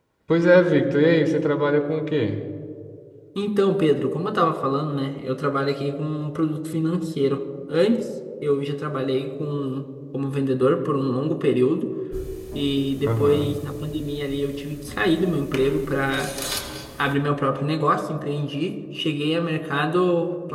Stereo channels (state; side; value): identical; both; correlation 1.00